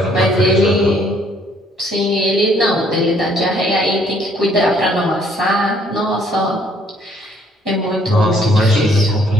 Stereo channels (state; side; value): normal; both; correlation 0.64